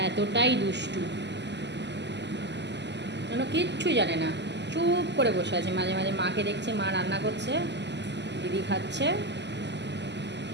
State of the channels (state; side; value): late; left; 0.51 ms